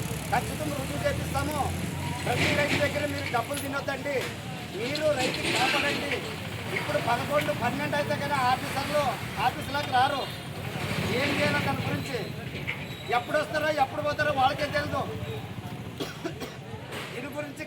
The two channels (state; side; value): identical; both; correlation 1.00